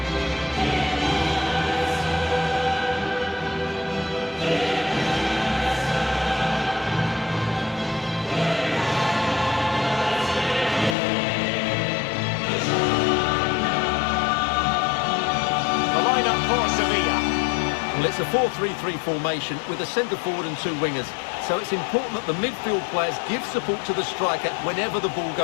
Well, it's a 4-3-3 formation with a centre-forward and 2 wingers. So it's important that the midfield players give support to the striker whenever the ball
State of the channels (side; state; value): right; drops out; at 11.0 s